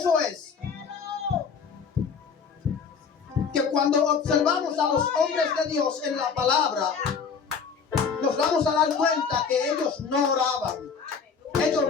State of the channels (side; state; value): right; quieter; 5.9 dB